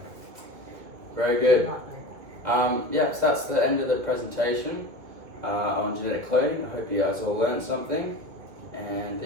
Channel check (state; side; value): late; left; 2.2 ms